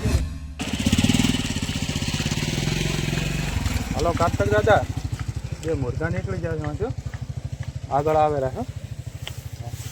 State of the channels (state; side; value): identical; both; correlation 1.00